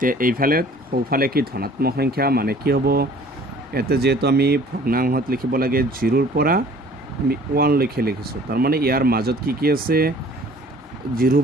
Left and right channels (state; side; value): normal; both; correlation 0.52